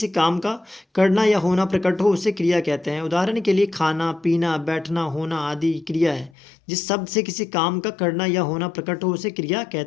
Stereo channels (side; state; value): right; drops out; at 6.3 s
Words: काम का करना या होना प्रकट हो उसे क्रिया कहते हैं। उदाहरण के लिए खाना, पीना, बैठना, होना आदि क्रिया है। जिस शब्द से किसी काम का करना या होना प्रकट हो उसे क्रिया